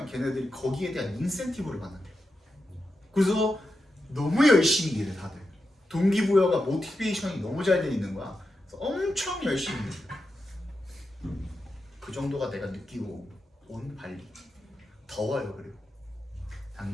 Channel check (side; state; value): both; normal; correlation 0.88